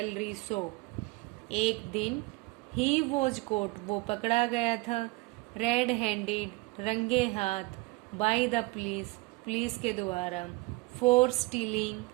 shop. एक दिन ही वॉज कोट, वो पकड़ा गया था, रेड हैंडेड, रंगे हाथ, बाय द पुलिस, पुलिस के द्वारा, फॉर स्टीलिंग,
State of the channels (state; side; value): quieter; left; 23.7 dB